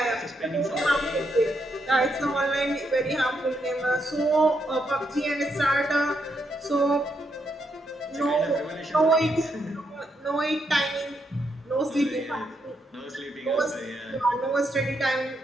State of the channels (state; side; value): normal; both; correlation 0.79